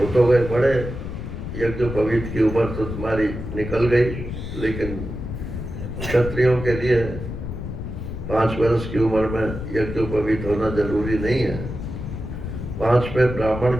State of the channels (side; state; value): left; noise; rumble, 7 dB below the sound